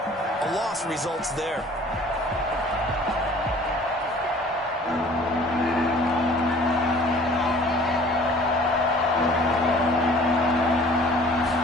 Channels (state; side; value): normal; both; correlation 0.50